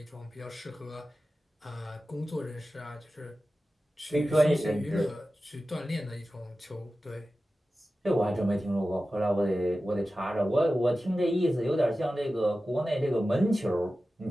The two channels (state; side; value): normal; both; correlation 0.94